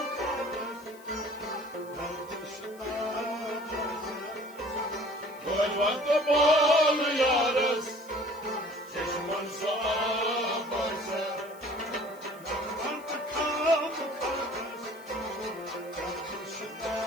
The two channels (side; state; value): left; noise; hiss, 24 dB below the sound